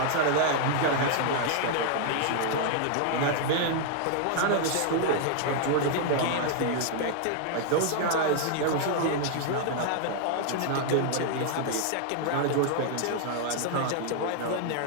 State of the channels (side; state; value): both; different; correlation 0.00